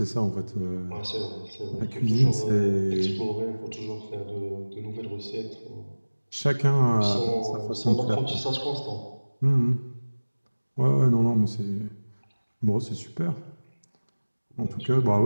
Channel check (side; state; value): both; inverted; correlation -1.00